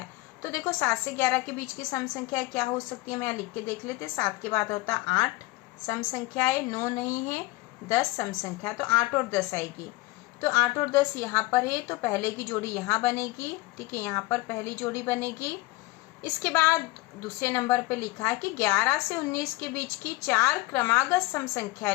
तो देखो 7 से 11 के बीच की सम संख्या क्या हो सकती है, मैं यहाँ लिख के देख लेते। 7 के बाद होता 8 सम संख्या है, 9 नहीं है, 10 सम संख्या। तो 8 और 10 आएगी। तो 8 और 10 यहाँ पर है तो पहले की जोड़ी यहाँ बनेगी। ठीक है, यहाँ पर पहली जोड़ी बनेगी। इसके बाद दूसरे नंबर पे लिखा है कि 11 से 19 के बीच की 4 क्रमागत सम संख्या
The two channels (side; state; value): right; quieter; 21.0 dB